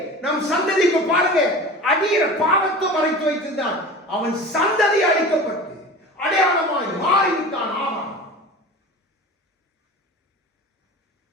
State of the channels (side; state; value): both; normal; correlation 0.36